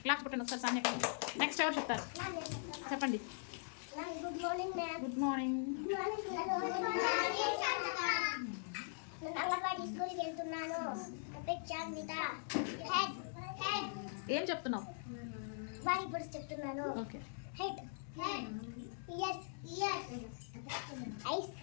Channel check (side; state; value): right; silent; 50 dB below the other